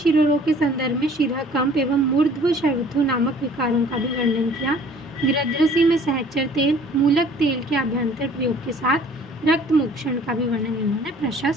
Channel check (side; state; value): both; normal; correlation 0.53